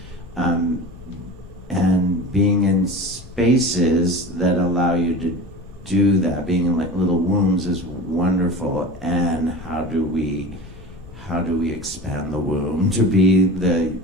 being in spaces that allow you to do that. Being in like little wombs is wonderful. And how do we expand the womb to be the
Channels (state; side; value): noise; left; rumble, 20 dB below the sound